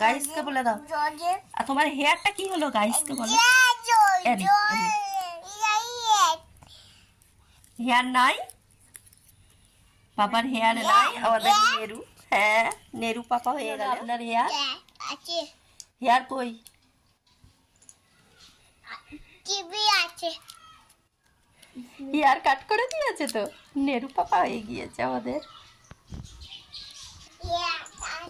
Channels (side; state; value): both; identical; correlation 1.00